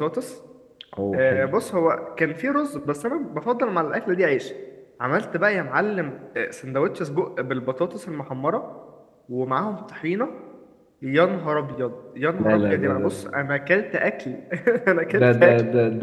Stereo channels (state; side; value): identical; both; correlation 1.00